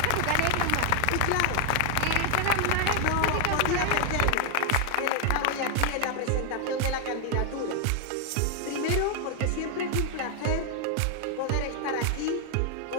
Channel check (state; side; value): different; both; correlation 0.00